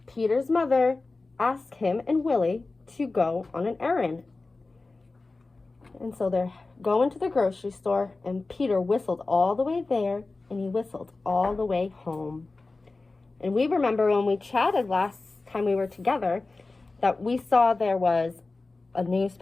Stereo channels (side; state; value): right; quieter; 3.5 dB